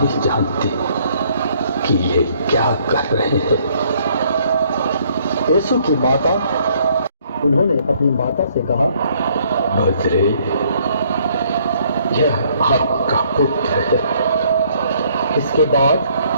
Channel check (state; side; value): inverted; both; correlation -0.65